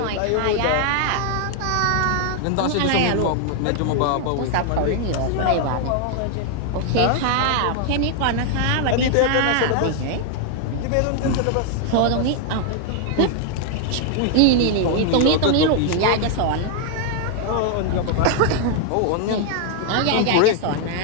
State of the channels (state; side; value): different; both; correlation 0.00